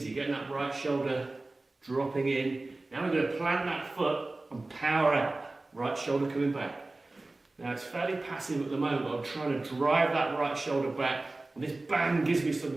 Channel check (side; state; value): left; quieter; 3.0 dB